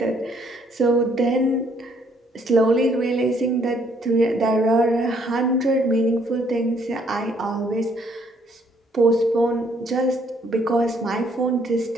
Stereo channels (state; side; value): normal; both; correlation 0.66